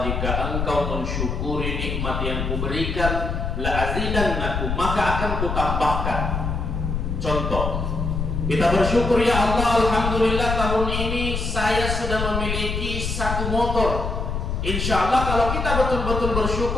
jika engkau mensyukuri nikmat yang kuberikan, la azidannakum, maka akan kutambahkan. Contoh, kita bersyukur, ya Allah, alhamdulillah tahun ini saya sudah memiliki satu motor. Insya Allah kalau kita betul-betul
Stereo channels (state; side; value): noise; left; rumble, 2 dB below the sound